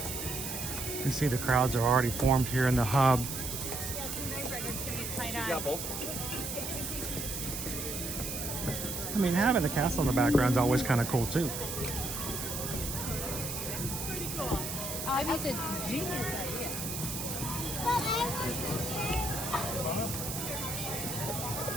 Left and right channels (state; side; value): noise; right; hiss, 5 dB below the sound